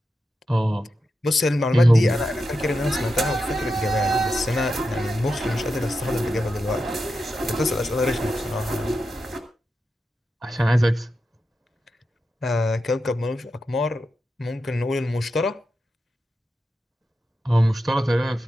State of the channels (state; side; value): normal; both; correlation 0.89